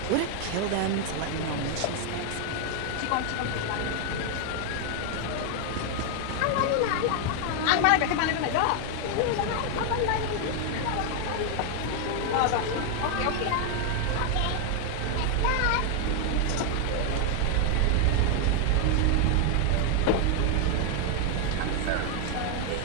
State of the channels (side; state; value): both; different; correlation 0.00